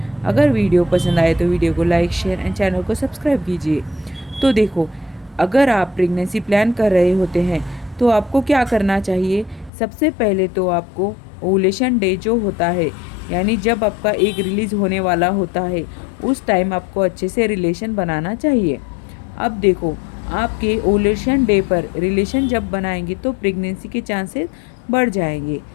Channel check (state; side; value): drops out; right; at 9.7 s